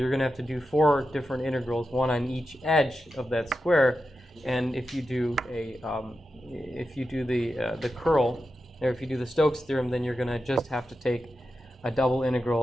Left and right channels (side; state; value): both; normal; correlation 0.90